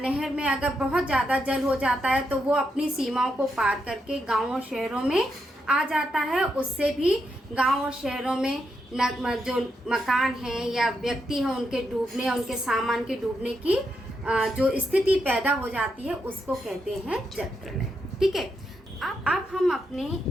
में अगर बहुत ज़्यादा जल हो जाता है तो वो अपनी सीमाओं को पार करके गाँव और शहरों में आ जाता है। उससे भी गाँव और शहरों में जो मकान हैं या व्यक्ति हैं उनके डूबने या उनके सामान के डूबने की जो स्थिति पैदा हो जाती है उसको कहते हैं जल प्रलय। ठीक है, अब हम अपने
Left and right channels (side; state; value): both; normal; correlation 0.82